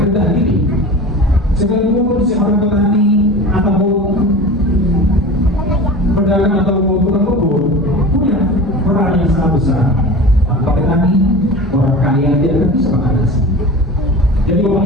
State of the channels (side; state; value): both; normal; correlation 0.34